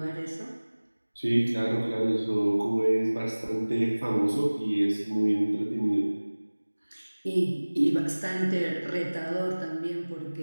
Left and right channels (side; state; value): both; inverted; correlation -1.00